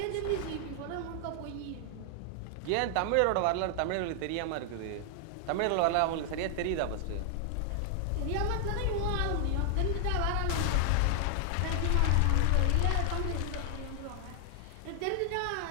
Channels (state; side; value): different; both; correlation 0.00